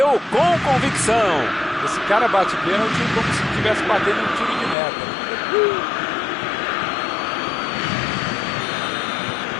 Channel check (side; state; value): right; drops out; at 4.8 s